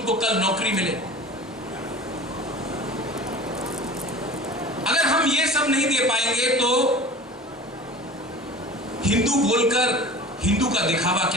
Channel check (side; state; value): both; normal; correlation 0.39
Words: कल नौकरी मिले। अगर हम ये सब नहीं दे पाएंगे तो हिंदू बोलकर हिंदू का दिखावा